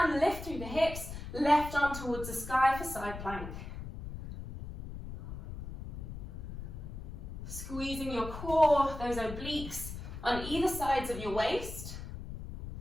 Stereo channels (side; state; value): left; noise; rumble, 9 dB below the sound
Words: lift through the hips, left arm towards the sky for side plank. Squeezing your core, those obliques on either sides of your waist.